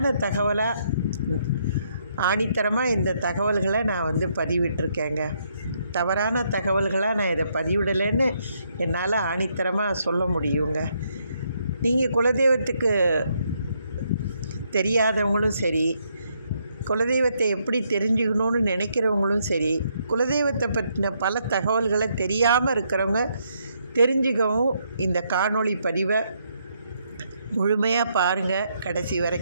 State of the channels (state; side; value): inverted; both; correlation -0.74